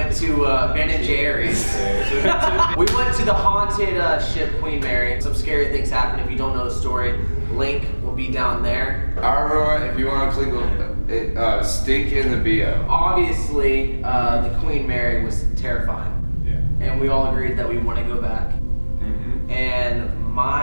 to Ben and Jerry's. We went to the haunted ship Queen Mary. Some scary things happened. If you don't know the story, link will be down there. Alright, if you want to click it, stink in the bio. Obviously, the Queen Mary was terrifying. Yeah. And we all agreed that we want to go back. Mm-hmm. And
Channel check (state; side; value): inverted; both; correlation -1.00